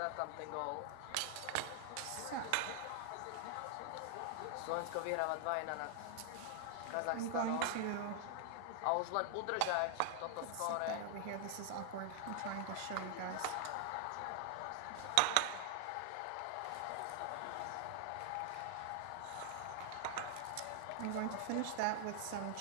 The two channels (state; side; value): different; both; correlation 0.00